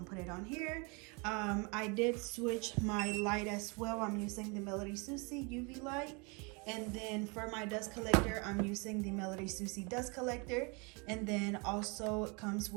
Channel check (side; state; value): left; quieter; 31.0 dB